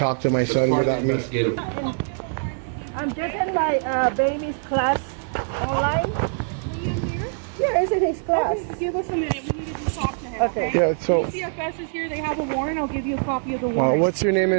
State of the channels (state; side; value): silent; left; digital silence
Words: to my son without me? I'm just in my baby's class online. Is Liam here? Yeah, it's in his class. Okay, give us a minute. We need to just talk to him, okay? Yeah, so CFS is here. They have a warrant. I'll give you a copy of the warrant. what's your name? Sir,